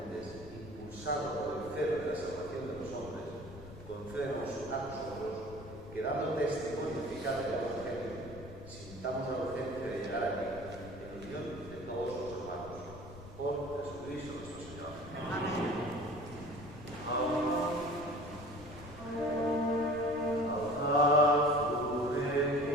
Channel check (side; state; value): left; noise; rumble, 15 dB below the sound